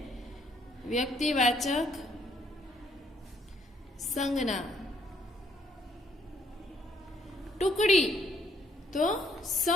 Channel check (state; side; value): normal; both; correlation 0.68